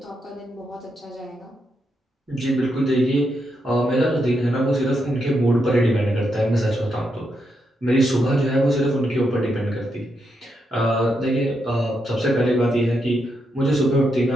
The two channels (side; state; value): both; normal; correlation 0.82